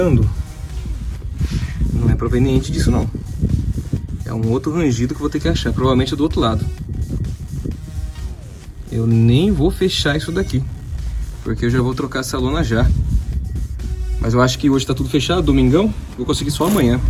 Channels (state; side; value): identical; both; correlation 1.00